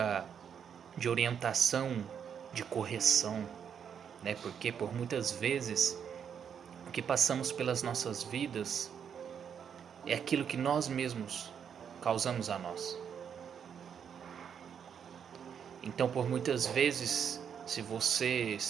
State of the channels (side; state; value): left; quieter; 7.8 dB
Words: de orientação, de correção, né? Porque por muitas vezes o que passamos pelas nossas vidas é aquilo que nós mesmos causamos a nós. Então, por muitas vezes, se você